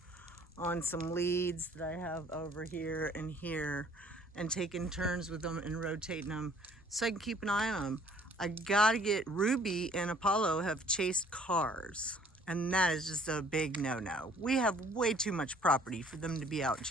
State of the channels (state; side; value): normal; both; correlation 0.57